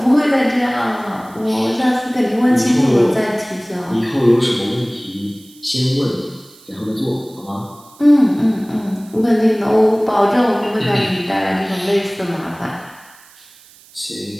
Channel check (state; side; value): noise; right; hiss, 25 dB below the sound